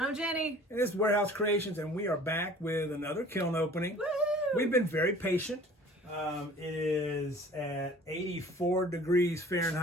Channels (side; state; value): both; normal; correlation 0.48